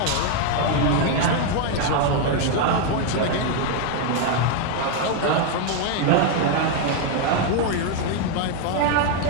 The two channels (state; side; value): different; both; correlation 0.01